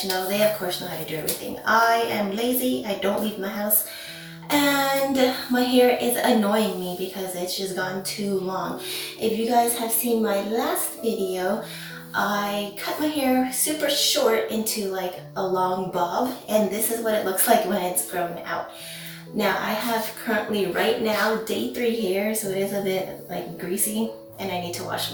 They of course know how to do everything. I am lazy, I don't leave my house, and my hair is annoying me because it's just gone too long. If you guys have seen my last video, I cut my hair super short into like a long bob, and this is what it looks like when it's grown out. Now I have currently right now day 3 hair, so it is a bit like greasy and I need to wash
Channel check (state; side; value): identical; both; correlation 1.00